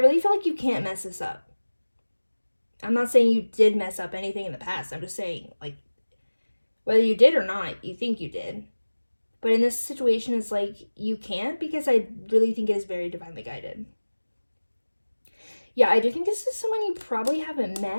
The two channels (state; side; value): inverted; both; correlation -1.00